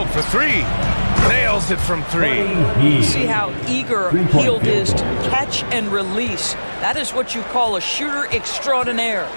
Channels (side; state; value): both; inverted; correlation -1.00